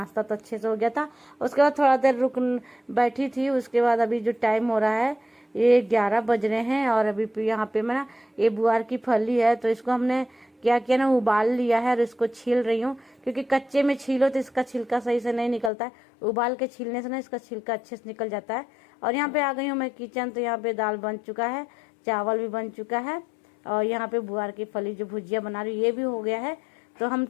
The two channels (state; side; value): drops out; right; at 15.7 s